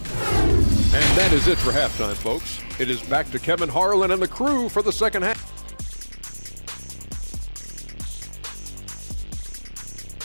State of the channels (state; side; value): inverted; both; correlation -1.00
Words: And that is it for halftime, folks. It is back to Kevin Harlan and the crew for the second half.